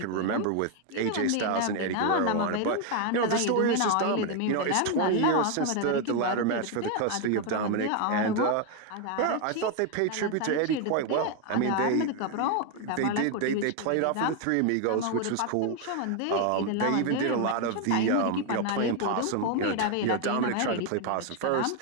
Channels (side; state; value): both; different; correlation 0.01